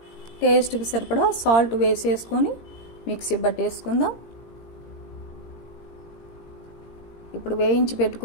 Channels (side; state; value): right; late; 17 ms